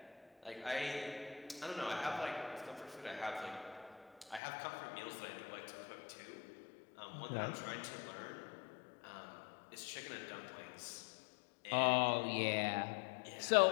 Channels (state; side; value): drops out; right; at 4.4 s